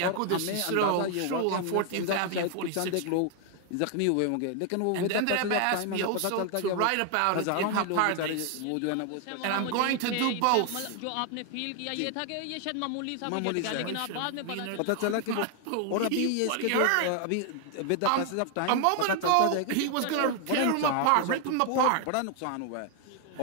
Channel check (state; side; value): different; both; correlation 0.00